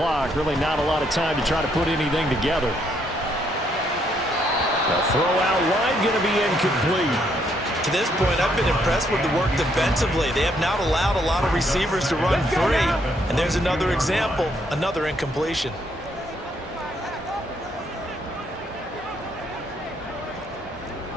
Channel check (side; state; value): both; normal; correlation 0.72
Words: really not a lot of time to try to put anything together. The throw out wide going to be incomplete. To this point, I've been impressed with the work defensively. They have not allowed a lot of receivers to run free. And there's another example, another incompletion.